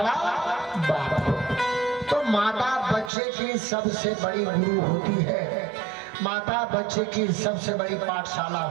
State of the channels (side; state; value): left; drops out; at 3.1 s